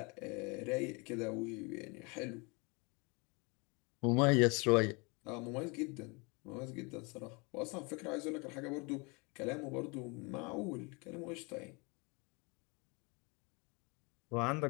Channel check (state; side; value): quieter; right; 29.7 dB